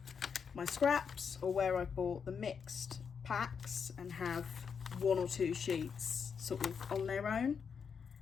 my scraps, or where I bought the mixed packs and have one or two sheets sort of on their own.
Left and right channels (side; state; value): right; quieter; 6.4 dB